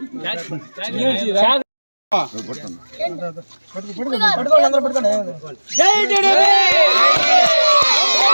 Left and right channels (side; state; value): both; inverted; correlation -1.00